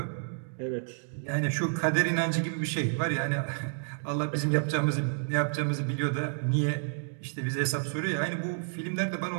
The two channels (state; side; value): silent; left; digital silence